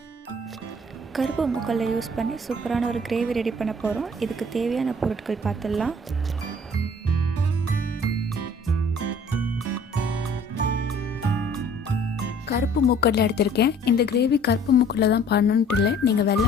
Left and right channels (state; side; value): normal; both; correlation 0.54